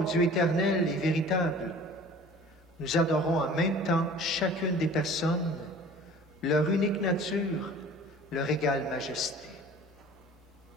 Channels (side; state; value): both; normal; correlation 0.45